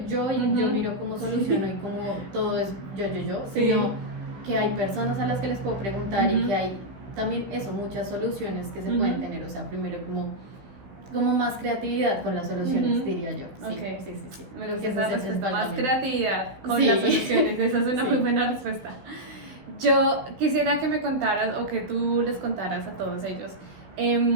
yo y yo Ujú. miro cómo soluciono y cómo todo es yo, Sí. sino que hay personas a las que les puedo preguntar y Ujú. que hay también eso, muchas soluciones que se Ujú. pueden tener. O sea, primero como más creatividad con las soluciones, Ujú. diría yo. Sí, Ok. sí. Me Creo gusta que ese esa es el respuesta, principal más cambio. creatividad con Sí. las soluciones, esa es una Sí. muy buena respuesta. Yo quisiera que me contaras o que tú les contaras a todos ellos,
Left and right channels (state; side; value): late; left; 16 ms